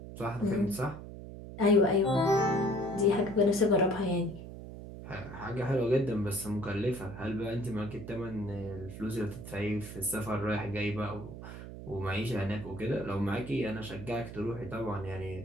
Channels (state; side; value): noise; right; hum, 11 dB below the sound